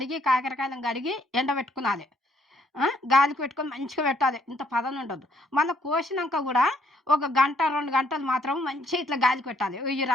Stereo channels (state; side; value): normal; both; correlation 0.68